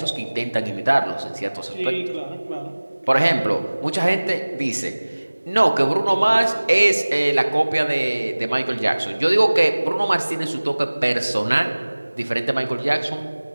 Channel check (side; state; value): both; inverted; correlation -1.00